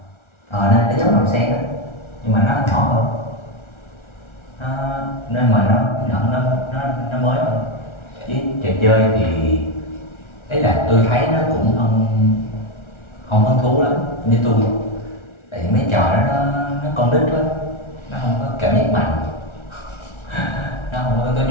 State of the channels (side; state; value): right; late; 1.4 ms